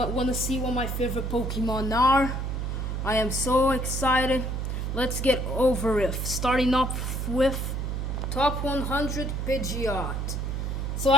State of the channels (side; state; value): right; noise; hum, 2 dB below the sound